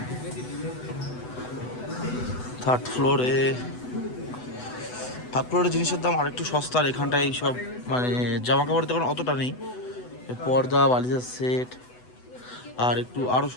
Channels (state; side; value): late; right; 8.0 ms